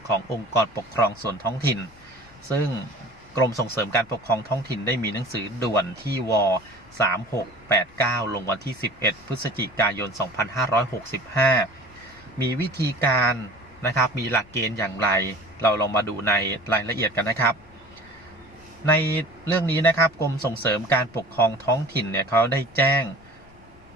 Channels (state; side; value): noise; left; rumble, 25 dB below the sound